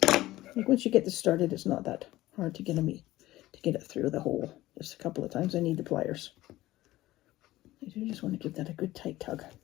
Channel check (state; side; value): quieter; right; 16.6 dB